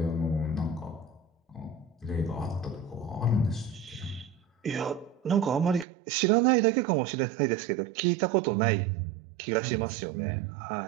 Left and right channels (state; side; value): drops out; left; at 5.9 s